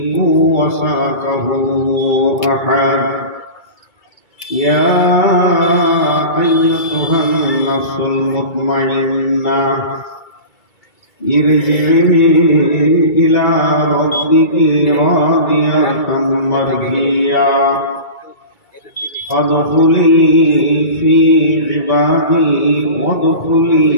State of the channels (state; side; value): late; right; 2.3 ms